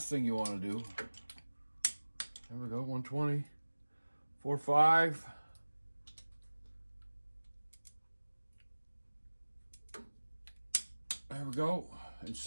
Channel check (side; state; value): both; inverted; correlation -1.00